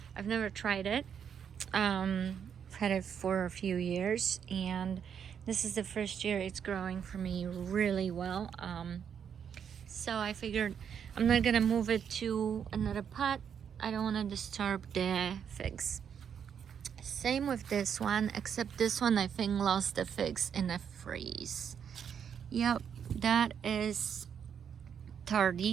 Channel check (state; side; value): quieter; left; 7.8 dB